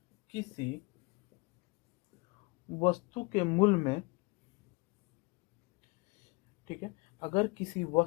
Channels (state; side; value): quieter; right; 26.9 dB